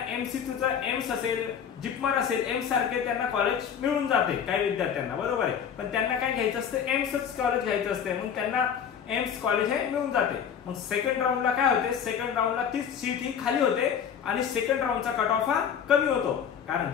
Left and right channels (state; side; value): quieter; right; 7.9 dB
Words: MCCचा एम्स असेल, जिपमर असेल, एम्स सारखे त्यांना कॉलेज मिळून जाते काही विद्यार्थ्यांना, बरोबर आहे, पण त्यांना काय घ्यायचं असतं, एम्सच कॉलेज घ्यायचं असते, मग त्यांना एम्स कॉलेज हे मिळून जाते। मग सेकंड राऊंडला काय होते, सेकंड राऊंडला ती सीट ही खाली होते आणि सेकंड राऊंडचा कट ऑफ हा कमी होतो, कारण